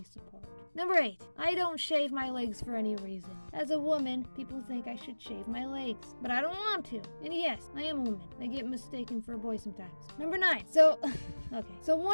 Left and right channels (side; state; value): both; inverted; correlation -1.00